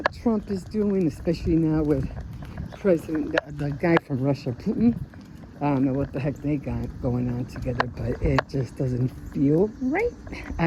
Trump is doing, especially now with the guy from Russia, Putin. I don't know what the heck they got going on together, but it just doesn't feel right.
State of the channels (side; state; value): both; identical; correlation 1.00